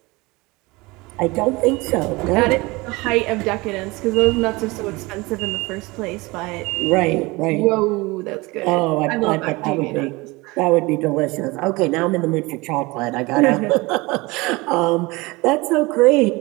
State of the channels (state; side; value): quieter; left; 23.4 dB